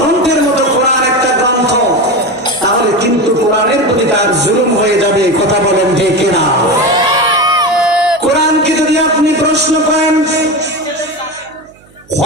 মতো কোরআন একটা গ্রন্থ, তাহলে কিন্তু কোরআনের প্রতি তার জুলুম হয়ে যাবে। কথা বলেন ঠিক না? কোরআনকে যদি আপনি প্রশ্ন করেন,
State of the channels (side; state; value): right; noise; hum, 29 dB below the sound